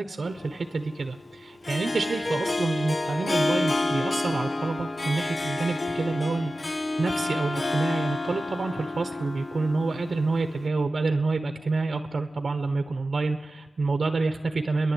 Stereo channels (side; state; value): both; normal; correlation 0.94